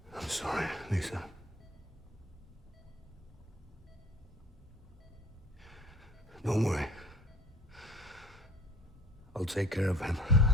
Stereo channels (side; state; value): both; normal; correlation 0.49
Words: I'm sorry, Lisa. Don't worry. I'll take care of him.